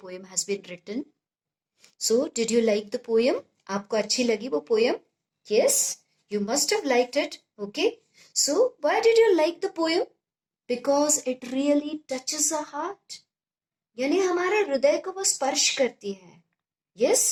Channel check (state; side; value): identical; both; correlation 1.00